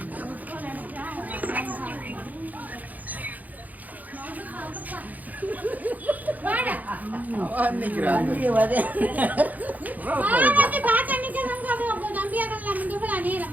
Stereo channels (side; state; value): left; late; 0.080 ms